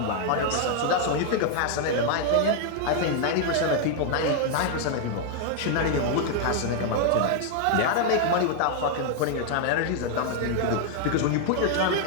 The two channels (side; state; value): both; different; correlation 0.00